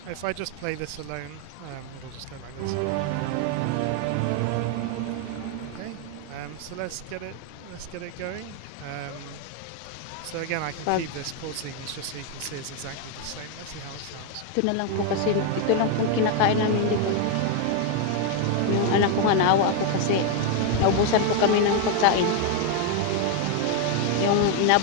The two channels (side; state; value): both; different; correlation 0.01